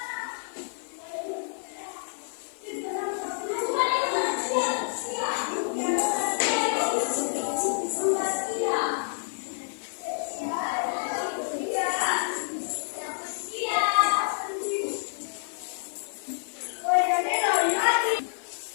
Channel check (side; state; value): right; silent; digital silence